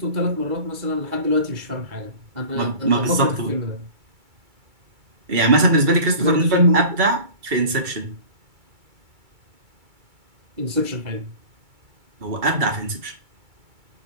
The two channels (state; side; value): late; left; 2.3 ms